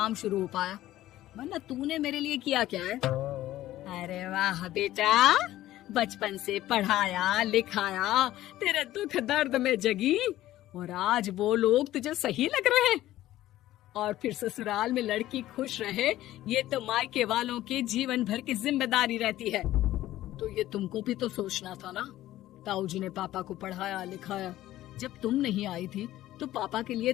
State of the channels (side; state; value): right; quieter; 14.6 dB